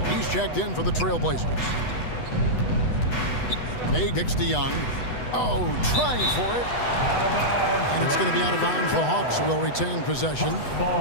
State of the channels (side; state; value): right; late; 8.1 ms